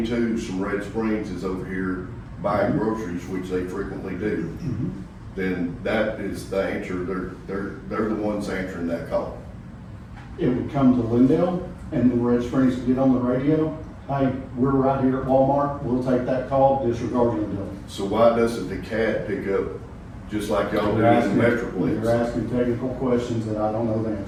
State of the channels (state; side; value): identical; both; correlation 1.00